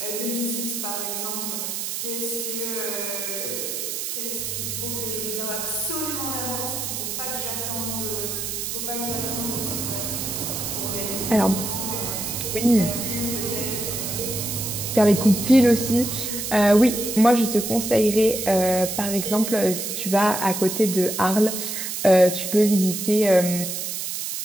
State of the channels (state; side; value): noise; right; hiss, 4 dB below the sound